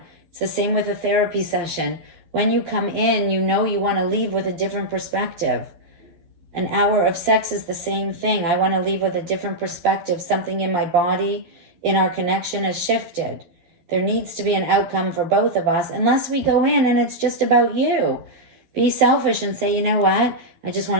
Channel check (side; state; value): left; late; 12 ms